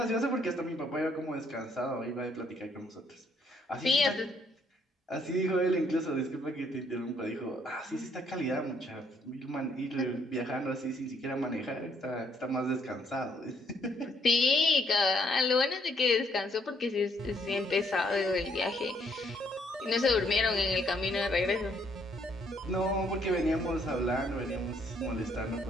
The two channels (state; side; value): normal; both; correlation 0.69